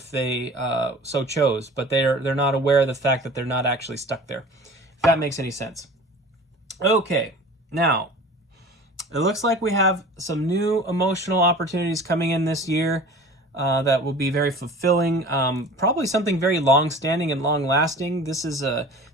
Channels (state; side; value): normal; both; correlation 0.41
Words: they so chose, but they're not aware of the fact that they're not actually stuck there, if that makes any sense. Okay, now, it looks like we have some new emotional opportunities coming in this year that will be very fulfilling, probably something very long-standing and long-lasting. This is a